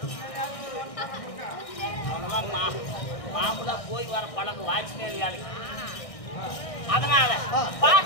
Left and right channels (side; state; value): right; late; 1.6 ms